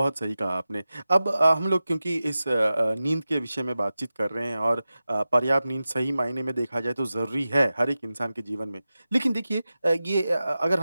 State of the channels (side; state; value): both; inverted; correlation -0.94